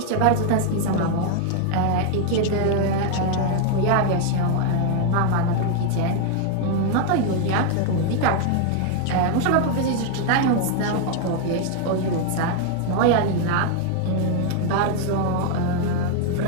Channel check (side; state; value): both; different; correlation 0.00